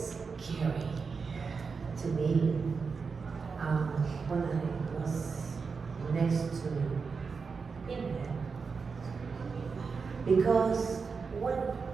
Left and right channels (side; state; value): left; quieter; 5.1 dB